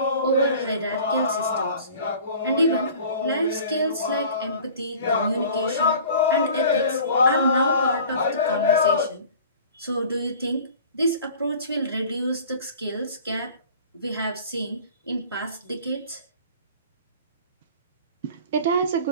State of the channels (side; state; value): both; inverted; correlation -0.45